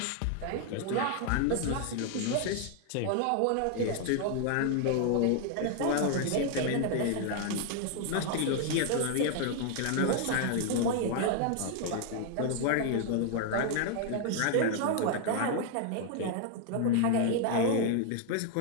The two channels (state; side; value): different; both; correlation 0.00